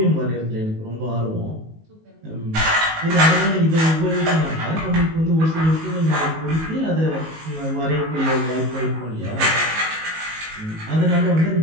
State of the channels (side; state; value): left; late; 19 ms